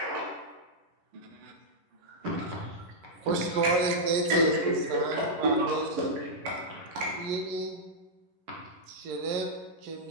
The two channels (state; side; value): late; left; 10 ms